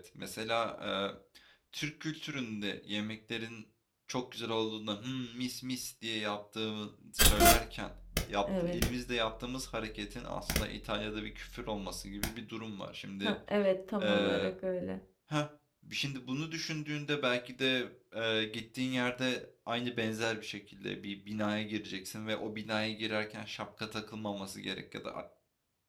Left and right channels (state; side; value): identical; both; correlation 1.00